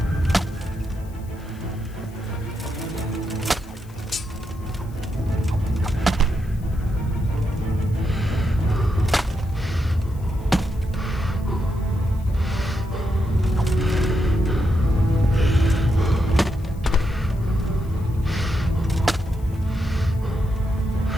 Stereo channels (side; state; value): left; noise; hiss, 27 dB below the sound